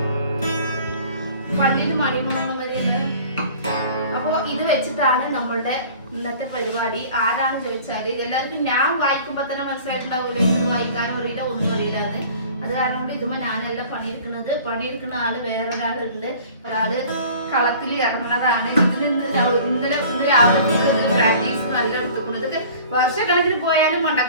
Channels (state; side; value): inverted; both; correlation -0.47